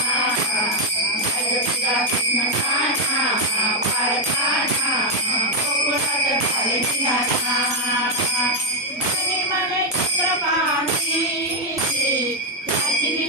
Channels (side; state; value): both; normal; correlation 0.02